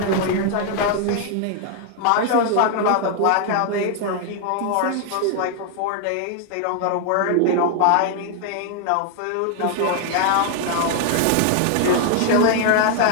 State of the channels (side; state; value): both; different; correlation 0.00